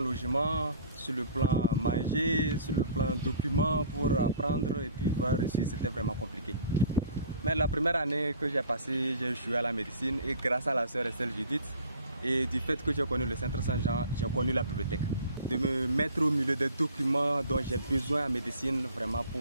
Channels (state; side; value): inverted; both; correlation -0.48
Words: sur le plan manger, sur le plan documents pour apprendre et puis voir reçu, c'était vraiment compliqué. Mais la première année que j'ai passée, j'ai échoué à la médecine et grâce à la sœur Estelle Judith et du fait que j'ai connu le Centre Saint-Jean, j'ai connu la bibliothèque. De me mettre au milieu des documents dont j'ai besoin en médecine vraiment